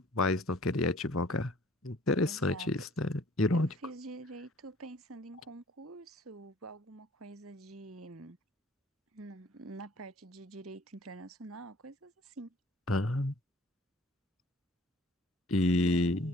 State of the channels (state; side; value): normal; both; correlation 0.53